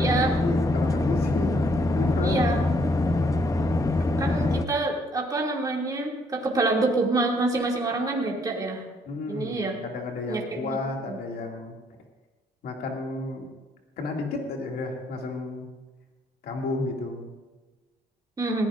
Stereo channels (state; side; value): normal; both; correlation 0.68